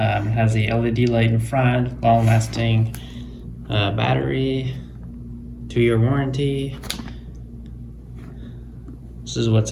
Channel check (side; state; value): both; identical; correlation 1.00